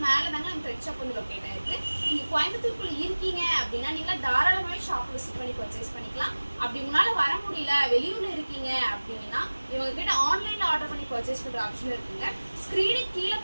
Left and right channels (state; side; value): inverted; both; correlation -1.00